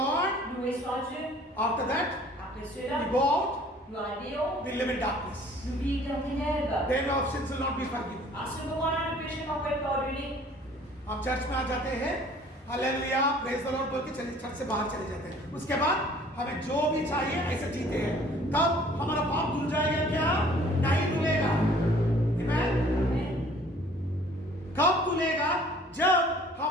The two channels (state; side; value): normal; both; correlation 0.54